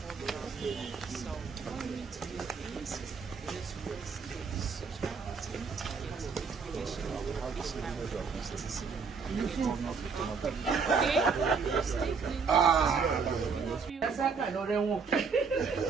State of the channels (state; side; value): quieter; left; 5.5 dB